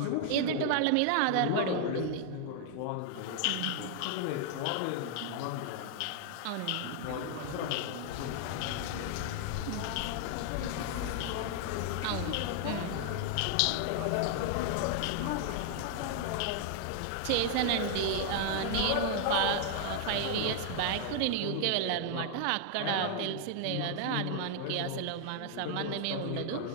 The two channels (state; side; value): different; both; correlation 0.00